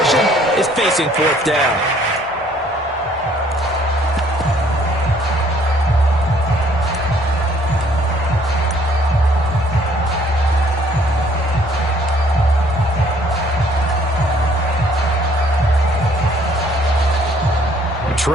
is facing 4th down.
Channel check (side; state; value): both; normal; correlation 0.61